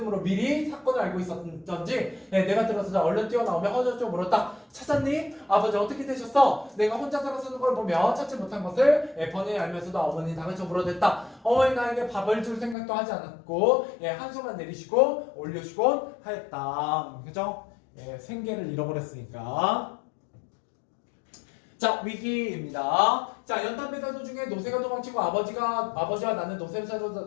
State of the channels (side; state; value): right; drops out; at 12.8 s